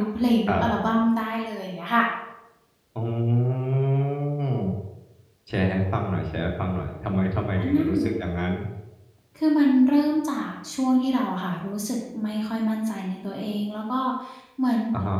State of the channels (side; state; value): both; identical; correlation 1.00